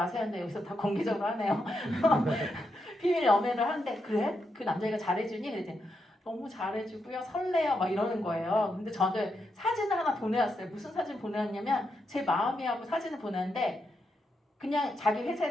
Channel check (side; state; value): both; normal; correlation 0.83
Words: 근데 여기서 다 공개적으로 하네요. 비밀 연애를 하는데 그래? 그 남자애가 잘해주니? 그랬더니 너무 잘해주고요. 설레요. 막 이러는 거예요. 근데 저는 사진을 하나 보내왔어요. 무슨 사진 보내왔냐면 제 마음이하고 사진을 보내는데 그냥 자기